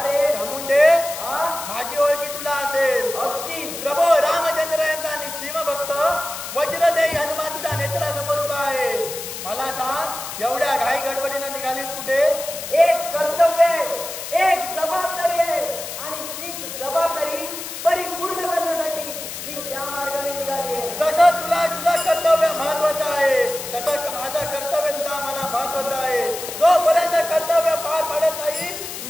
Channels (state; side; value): noise; left; hiss, 8 dB below the sound